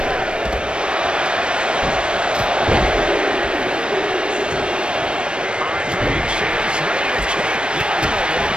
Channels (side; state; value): left; late; 0.055 ms